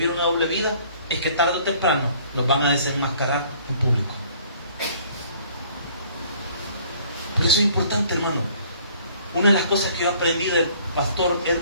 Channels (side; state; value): both; inverted; correlation -0.57